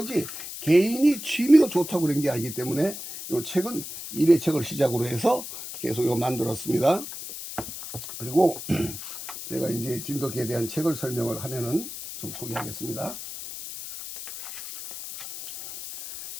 개인이 취미로 좋다고 그런 게 아니기 때문에 이 책은 1회 책을 시작으로 해서 계속 이거 만들었습니다. 그리고 제가 이제 진돗개에 대한 책을 설명을 하면은 좀 소개하겠습니다.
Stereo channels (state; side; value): noise; left; hiss, 10 dB below the sound